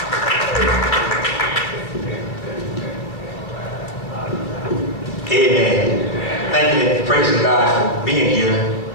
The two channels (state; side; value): late; right; 2.5 ms